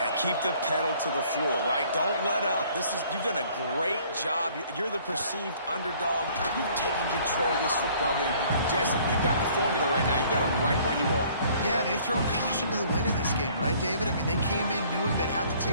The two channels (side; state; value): both; inverted; correlation -0.57